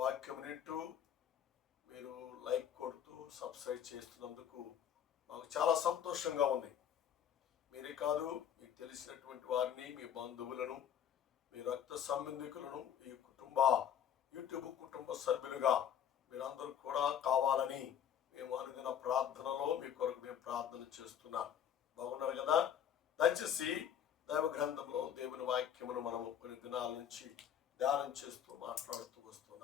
వింటూ మీరు లైక్ కొడుతూ సబ్స్క్రైబ్ చేస్తున్నందుకు మాకు చాలా సంతోషంగా ఉంది. మీరే కాదు, మీకు తెలిసినటువంటి వారిని, మీ బంధువులను, మీ రక్త సంబంధికులను ఈ యూట్యూబ్ కుటుంబ సభ్యులుగా మీరందరూ కూడా కావాలని మేము అనుదిన ప్రార్థనలో మీ కొరకు మేము ప్రార్థన చేస్తున్నాం. బాగున్నారు కదా? దయచేసి దైవ గ్రంథంలో దేవుని వాక్యమును మనము కొన్ని దినాల నుంచి ధ్యానం చేస్తూ మాట్లాడుతూ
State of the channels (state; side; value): quieter; right; 9.2 dB